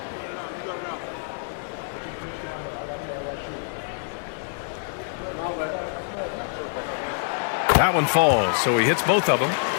That one falls, so he hits both of them.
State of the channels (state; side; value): silent; right; digital silence